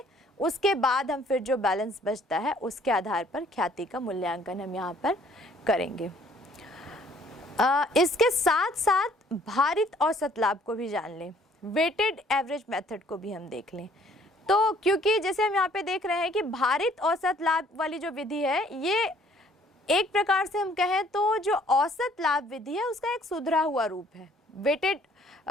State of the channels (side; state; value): both; normal; correlation 0.60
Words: उसके बाद हम फिर जो बैलेंस बचता है उसके आधार पर ख्याति का मूल्यांकन हम यहाँ पर करेंगे। इसके साथ साथ भारित औसत लाभ को भी जान लें, वेटेड एवरेज मेथड को भी हम देख लें। तो क्योंकि जैसे हम यहाँ पे देख रहे हैं कि भारित औसत लाभ वाली जो विधि है, ये एक प्रकार से हम कहें तो जो औसत लाभ विधि है उसका एक सुधरा हुआ रूप है। वेटेड